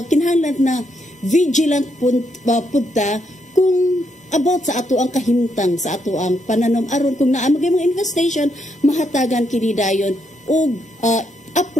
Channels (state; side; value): normal; both; correlation 0.77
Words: kinahanglan na vigilant punta kung about sa ato ang kahimtang sa ato ang pananom aron kung naa magay mga infestation mahatagan kini dayon og